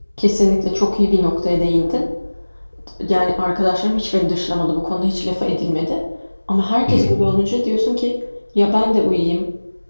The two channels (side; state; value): both; inverted; correlation -1.00